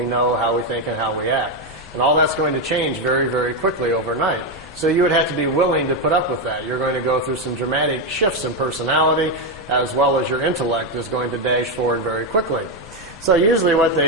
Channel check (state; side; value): normal; both; correlation 0.07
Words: know, how we think, and how we act. And all that's going to change very, very quickly overnight. So you would have to be willing to put up with that. You're going to go through some dramatic shifts in personality, as well as your intellect is going to dash forward very quickly. So usually what